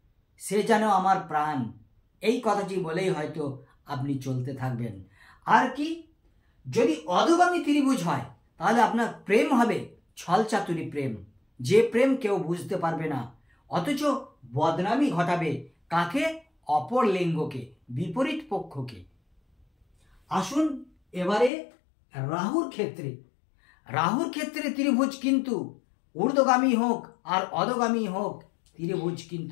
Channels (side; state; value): right; drops out; at 21.5 s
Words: সে যেন আমার প্রাণ, এই কথাটি বলেই হয়তো আপনি চলতে থাকবেন। আর কি, যদি অধোগামী ত্রিভুজ হয়, তাহলে আপনার প্রেম হবে ছলচাতুরি প্রেম, যে প্রেম কেউ বুঝতে পারবে না, অথচ বদনামি ঘটাবে কাকে, অপর লিঙ্গকে, বিপরীত পক্ষকে। আসুন এবারে রাহুর ক্ষেত্রে। রাহুর ক্ষেত্রে ত্রিভুজ কিন্তু ঊর্ধ্বগামী হোক আর অধোগামী হোক, ত্রিভুজ